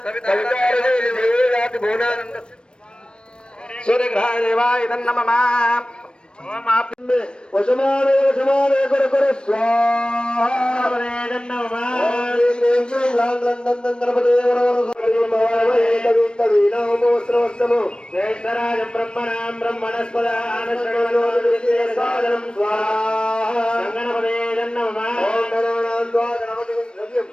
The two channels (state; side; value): late; right; 0.054 ms